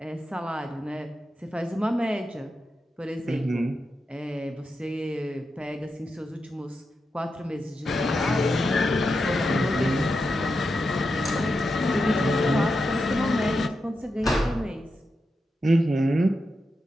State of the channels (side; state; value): both; normal; correlation 0.88